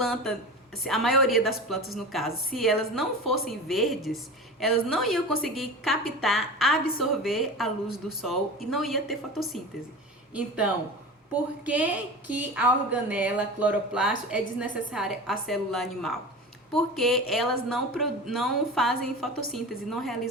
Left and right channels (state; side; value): normal; both; correlation 0.31